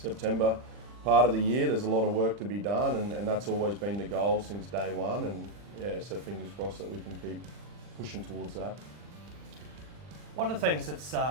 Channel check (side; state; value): left; late; 40 ms